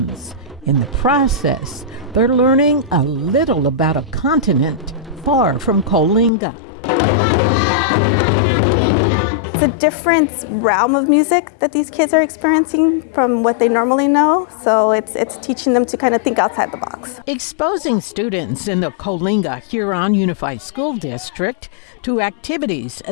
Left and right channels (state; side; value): drops out; right; at 6.3 s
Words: In the process, they're learning a little about a continent far from Coalinga. It's a different realm of music that these kids are experiencing from what they normally know, so it's teaching them to kind of think outside the box. Exposing students in the Coalinga-Huron Unified School District to activities